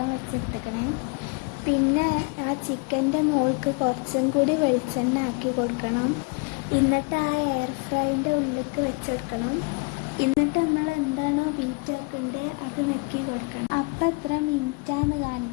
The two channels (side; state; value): right; quieter; 30.8 dB